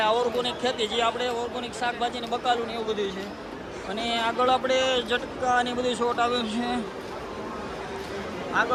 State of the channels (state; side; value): identical; both; correlation 1.00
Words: આ ઓર્ગોનિક ખેતી જે આપણે ઓર્ગોનિક શાકભાજીને બકાલું ને એવું બધું છે. અને આગળ આપણે ઝટકા ને બધું શોટ આવ્યું છે.